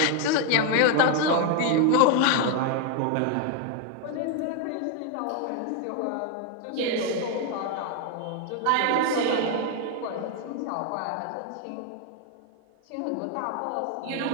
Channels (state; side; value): different; both; correlation 0.01